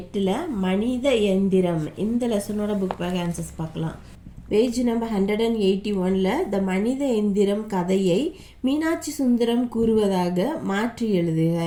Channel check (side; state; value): both; identical; correlation 1.00